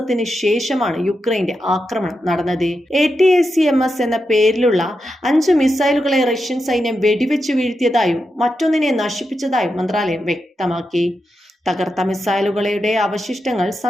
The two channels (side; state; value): both; normal; correlation 0.87